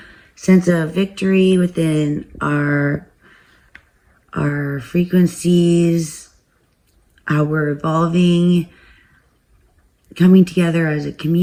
sense of victory within our frequencies, how we're evolving, coming together as a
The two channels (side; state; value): both; identical; correlation 1.00